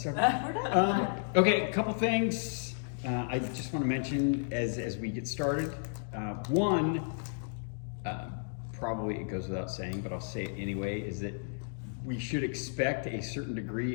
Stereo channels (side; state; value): right; silent; digital silence